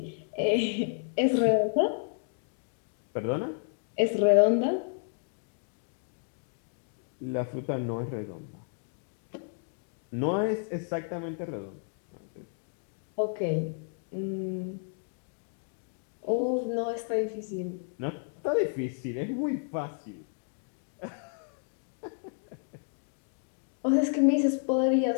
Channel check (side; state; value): right; silent; 57 dB below the other